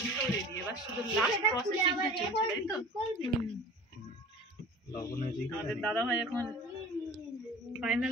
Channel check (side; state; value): both; normal; correlation 0.42